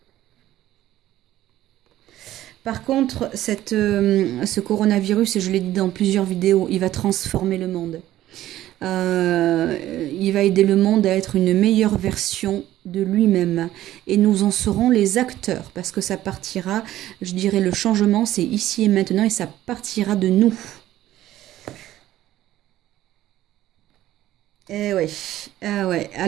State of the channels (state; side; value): quieter; left; 14.0 dB